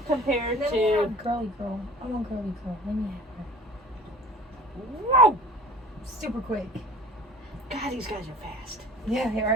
compared to... girly girl. I want girly girl. Let me have her. Whoa! Super quick. God, these guys are fast. Yeah,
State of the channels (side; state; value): both; normal; correlation 0.44